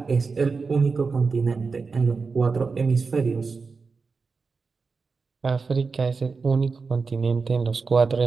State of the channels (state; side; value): quieter; left; 4.6 dB